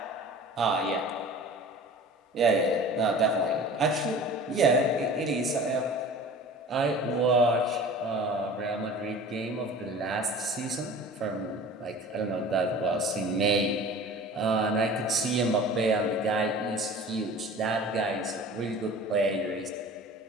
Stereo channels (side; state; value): both; normal; correlation 0.41